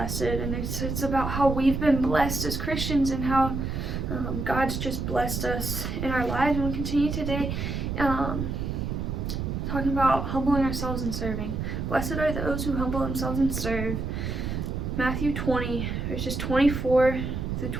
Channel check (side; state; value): right; noise; rumble, 3 dB below the sound